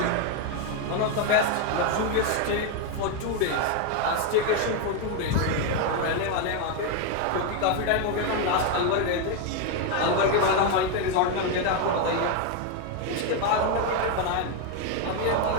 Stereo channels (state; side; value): different; both; correlation 0.02